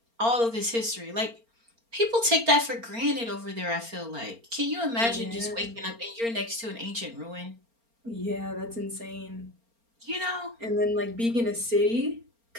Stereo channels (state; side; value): late; left; 4.3 ms